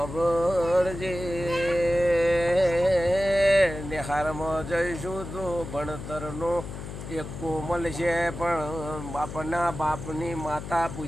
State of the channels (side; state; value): left; noise; hum, 9 dB below the sound